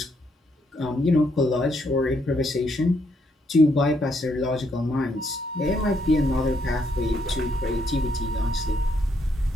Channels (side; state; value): both; normal; correlation 0.74